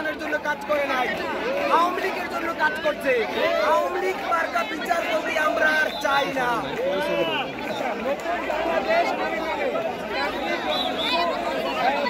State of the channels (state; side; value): identical; both; correlation 1.00